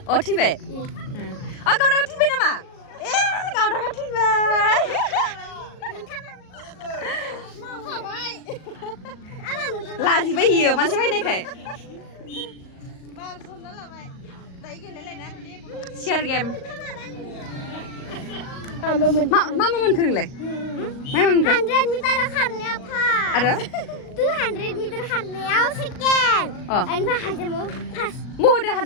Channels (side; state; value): right; late; 38 ms